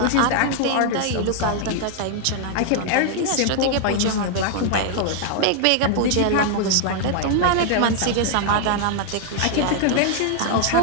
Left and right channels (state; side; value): different; both; correlation 0.00